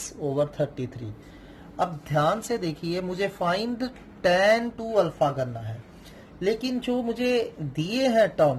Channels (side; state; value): both; identical; correlation 1.00